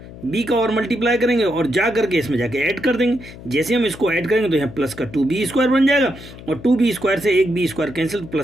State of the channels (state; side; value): noise; left; hum, 16 dB below the sound